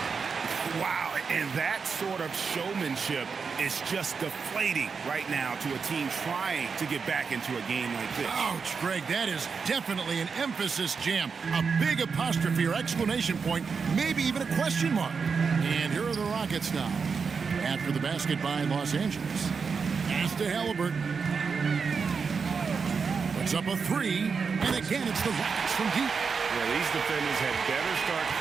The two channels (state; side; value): quieter; left; 5.5 dB